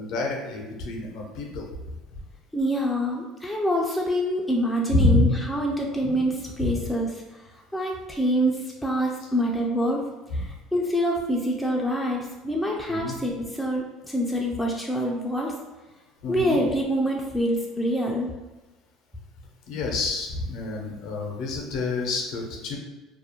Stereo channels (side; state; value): both; normal; correlation 0.58